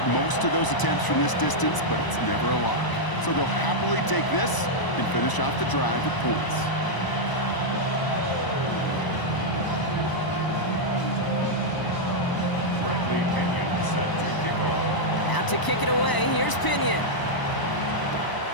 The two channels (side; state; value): right; late; 1.0 ms